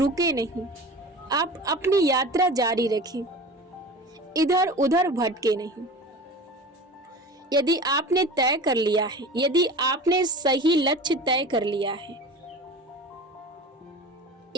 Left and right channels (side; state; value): both; normal; correlation 0.35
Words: नहीं, आप अपनी यात्रा जारी रखें, इधर उधर भटके नहीं। यदि आपने तय कर लिया है, यदि आपने सही लक्ष्य तय कर लिया है,